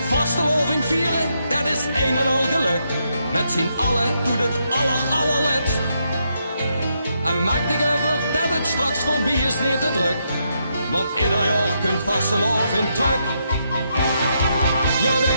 Vasteloving vieren, dat is een en al geluk. Met z'n allen doet het allerletst. En maak dich over dat het straks voorbij is niet te druk. Want ieder jaar kunt vasteloving terug. Ja,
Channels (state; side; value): inverted; both; correlation -0.79